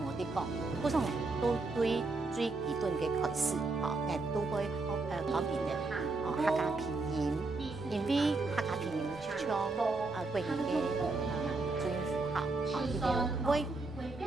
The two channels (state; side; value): quieter; left; 3.5 dB